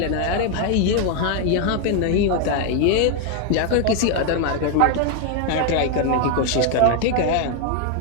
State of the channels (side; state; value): both; different; correlation 0.00